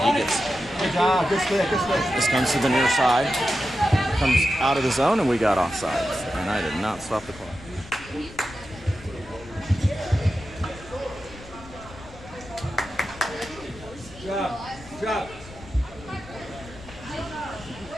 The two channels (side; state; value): left; noise; rumble, 18 dB below the sound